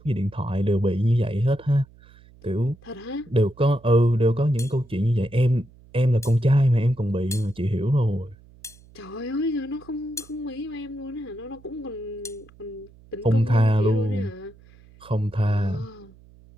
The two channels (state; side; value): noise; right; hum, 25 dB below the sound